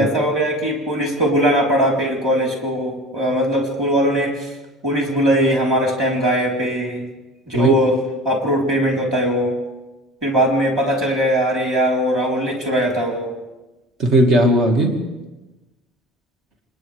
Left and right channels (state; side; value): normal; both; correlation 0.39